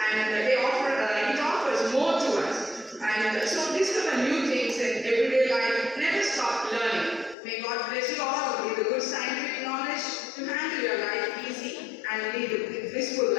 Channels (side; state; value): right; drops out; at 7.4 s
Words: and it offers more to us. And so discover new things in everyday life. Never stop learning. May God bless you all with the good scientific knowledge to handle your life easy and lead a blissful